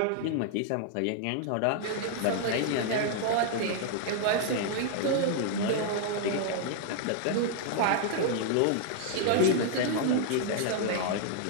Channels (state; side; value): different; both; correlation -0.01